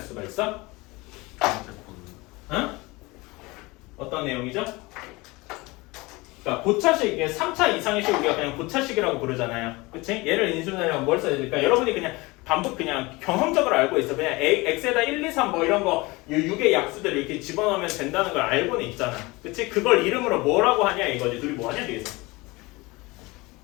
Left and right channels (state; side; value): quieter; right; 23.3 dB